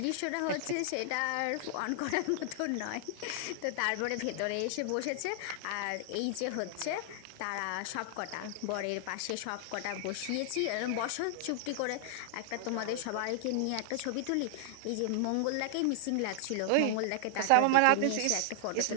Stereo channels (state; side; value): different; both; correlation -0.01